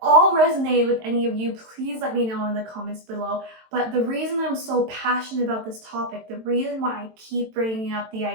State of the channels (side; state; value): left; late; 22 ms